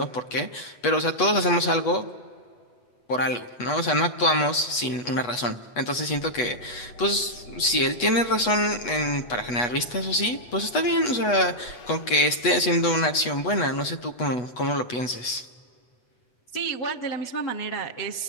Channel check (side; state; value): right; late; 8.2 ms